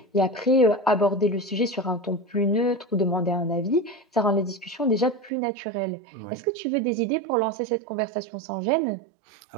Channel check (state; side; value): drops out; left; at 5.3 s